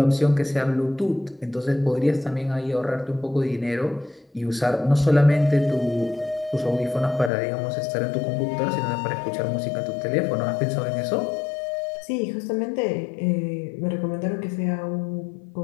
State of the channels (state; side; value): drops out; right; at 7.3 s